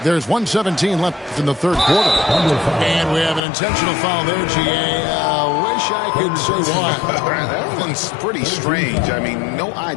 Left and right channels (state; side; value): drops out; right; at 3.4 s